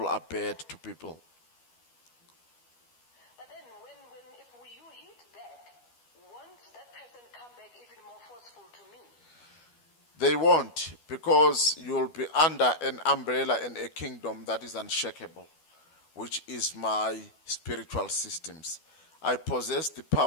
are bad to people. But then if you hit back, won't that person come back even more forceful to me? They won't, because you'll be under an umbrella and a kingdom that is unshakable, which is my spiritual systems. I possess the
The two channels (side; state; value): right; late; 12 ms